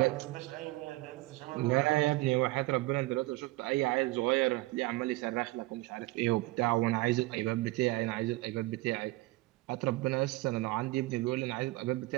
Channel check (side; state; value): left; quieter; 20.3 dB